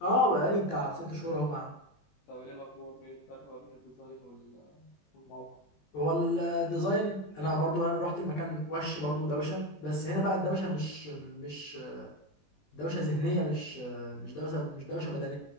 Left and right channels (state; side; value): late; right; 20 ms